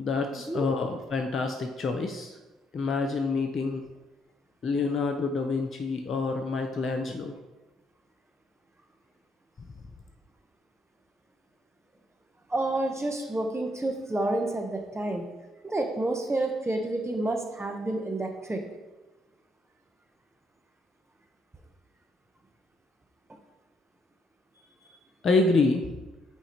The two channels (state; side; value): normal; both; correlation 0.74